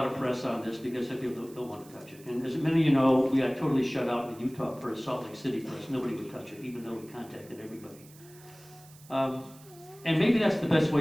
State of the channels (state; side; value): noise; right; hiss, 23 dB below the sound